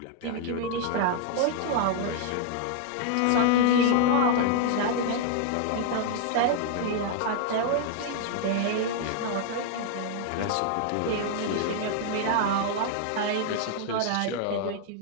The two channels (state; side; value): different; both; correlation 0.00